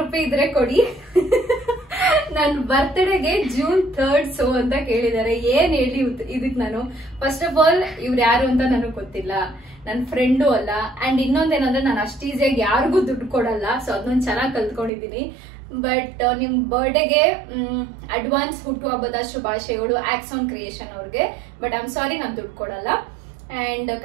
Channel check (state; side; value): drops out; left; at 14.9 s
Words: ರೂಪಾಯಿ ಇದ್ರೆ ಕೊಡಿ ನನ್ನ ಬರ್ತ್ಡೇಗೆ June 3rd ಸೋ ಅಂತ ಕೇಳಿದ್ದಾರೆ. ಏನ್ ಹೇಳಿ ಇದಕ್ ನಾನು, ಫಸ್ಟ್ ಆಫ್ ಆಲ್ ಇವ್ರು ಯಾರು ಅಂತ ನನಗೆ ಗೊತ್ತಿಲ್ಲ, ನನ್ನ ಫ್ರೆಂಡು ಅಲ್ಲ. ಅಂಡ್ ಇನ್ನೊಂದೇನಂದ್ರೆ ನಾನು ಅಷ್ಟು ಈಸಿಯಾಗಿ ಯಾರಿಗೂ ದುಡ್ಡು ಕೊಡಲ್ಲ. ಸೊ ಅದನ್ನೊಂದು ಚೆನ್ನಾಗಿ ಕಲ್ತ್ಕೊಂಡಿದೀನಿ. ಬಟ್ ನಿಮ್ ಬರ್ಡೇಗೆ ಅಡ್ವಾನ್ಸ್ ಹುಟ್ಟುಹಬ್ಬದ ಶುಭಾಶಯಗಳು ಆಕ್ಸಾನ್ ಕ್ರಿಯೇಷನ್ ಅವ್ರಿಗೆ. ಬಟ್ ಐ ಆಮ್ ಸಾರಿ, ನಾನು ದುಡ್ಡು ಕೊಡಲ್ಲ. ಅಂಡ್